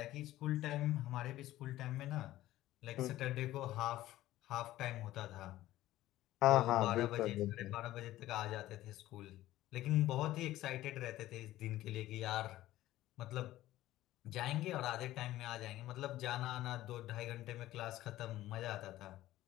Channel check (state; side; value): quieter; right; 15.2 dB